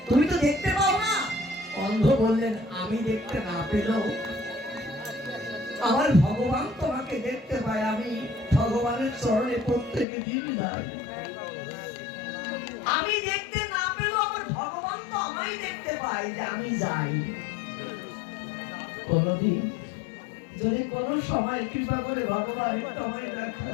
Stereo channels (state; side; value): drops out; right; at 10.1 s